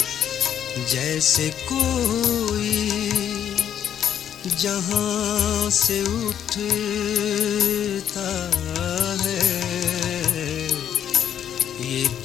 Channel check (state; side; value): quieter; right; 9.6 dB